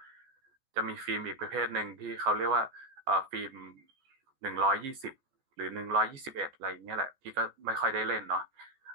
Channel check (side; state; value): left; late; 14 ms